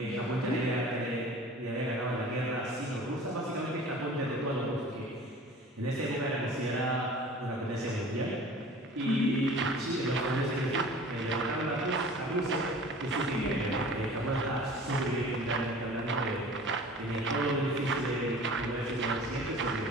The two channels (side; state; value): both; normal; correlation 0.43